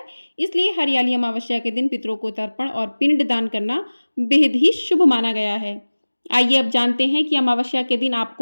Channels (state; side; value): inverted; both; correlation -1.00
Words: इसलिए हरियाली अमावस्या के दिन पितरों को तर्पण और पिंड दान करना बेहद ही शुभ माना गया है। आइए अब जानते हैं कि अमावस्या के दिन